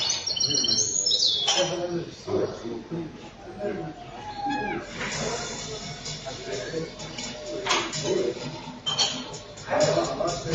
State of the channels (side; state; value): both; identical; correlation 1.00